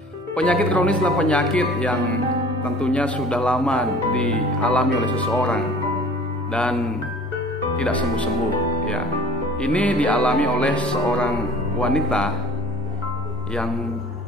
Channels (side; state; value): both; normal; correlation 0.47